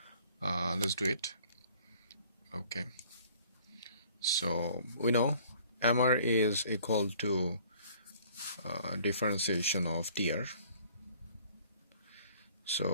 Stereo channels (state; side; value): inverted; both; correlation -0.56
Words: Let's do it. Okay, so we know MR is equal to differentiation of TR.